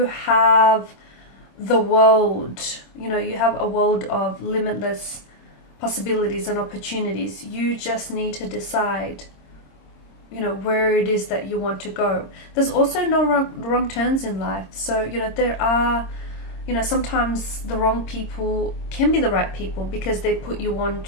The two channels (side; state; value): right; late; 26 ms